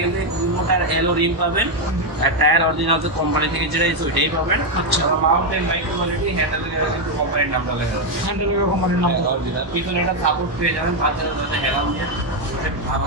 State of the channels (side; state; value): left; late; 1.1 ms